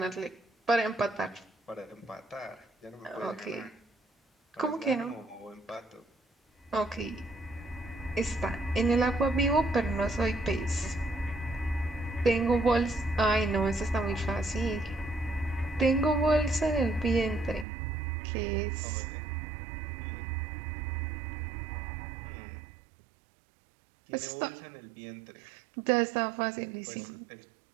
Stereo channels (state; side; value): drops out; left; at 17.7 s